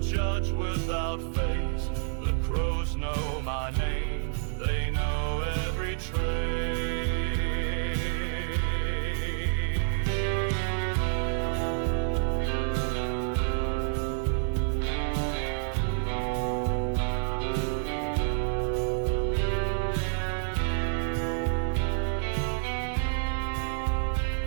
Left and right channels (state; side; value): silent; left; 59 dB below the other